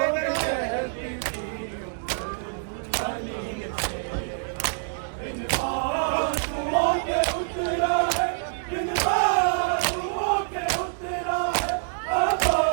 बाजुओं के उतरा है, बिन बाजुओं के उतरा है,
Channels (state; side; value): silent; left; 61 dB below the other